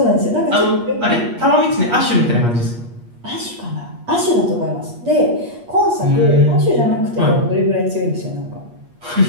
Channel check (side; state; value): left; late; 8.4 ms